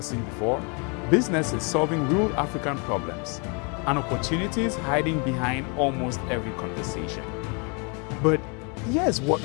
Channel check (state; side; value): quieter; right; 34.2 dB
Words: before, businesses solving real African problems, and opportunities hiding behind almost every conversation. But here's what